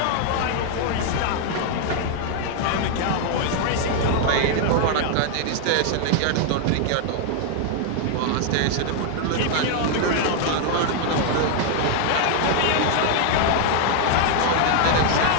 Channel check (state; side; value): different; both; correlation 0.00